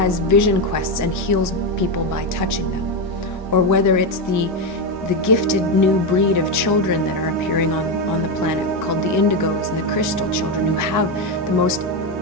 vision quests and heals people by touching them, or whether it's the gifted new breed of children that are appearing on the planet called the indigos and the crystal children, who have the most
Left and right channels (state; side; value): normal; both; correlation 0.09